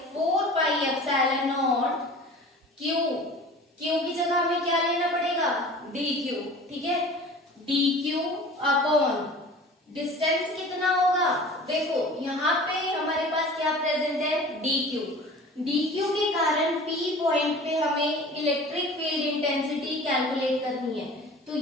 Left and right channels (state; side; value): normal; both; correlation 0.42